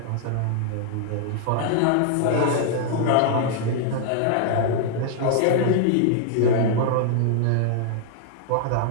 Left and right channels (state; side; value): different; both; correlation -0.01